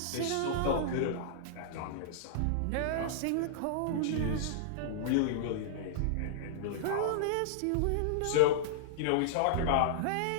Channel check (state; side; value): different; both; correlation -0.02